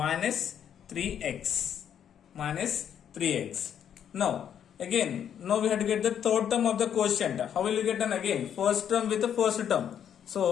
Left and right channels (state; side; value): quieter; right; 9.0 dB